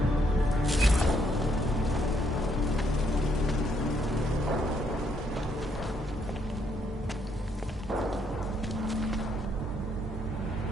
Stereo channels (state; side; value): normal; both; correlation 0.72